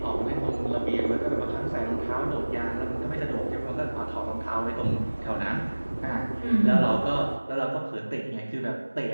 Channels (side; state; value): both; inverted; correlation -1.00